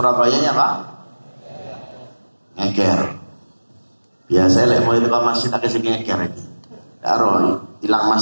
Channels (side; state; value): both; inverted; correlation -1.00